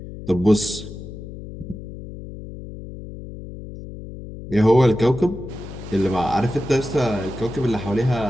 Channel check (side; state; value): left; noise; hum, 12 dB below the sound